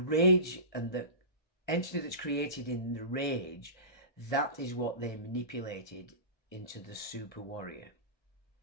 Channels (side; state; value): right; late; 1.4 ms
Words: and the entity that's created in the rage, that is what they manipulated into the super warrior.